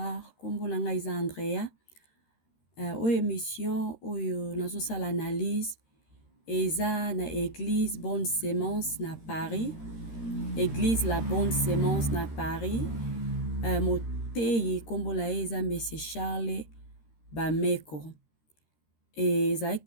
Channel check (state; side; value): late; right; 13 ms